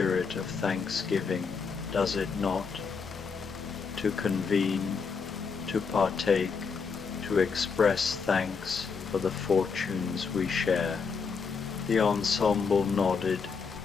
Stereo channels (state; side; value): quieter; right; 5.4 dB